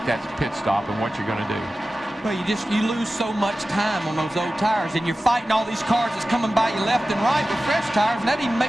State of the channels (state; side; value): normal; both; correlation 0.95